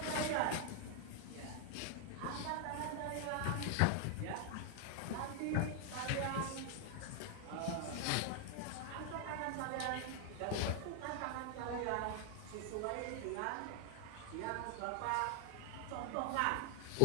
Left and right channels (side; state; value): both; different; correlation 0.00